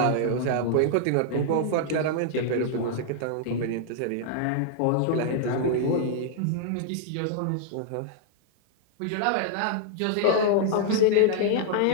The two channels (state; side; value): different; both; correlation -0.01